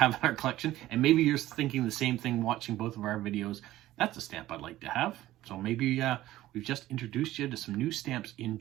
in our collection, and maybe you're thinking the same thing watching both of our videos. That's a stamp I'd like to have. So maybe we've just introduced you to some new stamps in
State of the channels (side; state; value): left; quieter; 15.2 dB